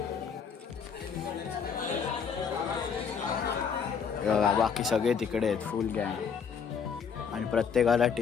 बघा बाकी सगळे तिकडे आहेत फुल गँग आणि प्रत्येकाला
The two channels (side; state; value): right; quieter; 6.6 dB